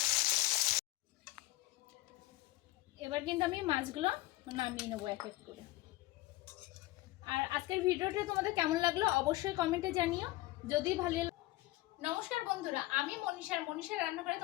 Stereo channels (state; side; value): quieter; right; 17.9 dB